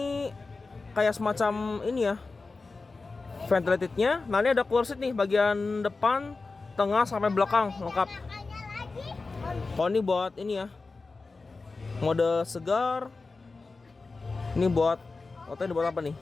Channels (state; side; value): quieter; right; 3.9 dB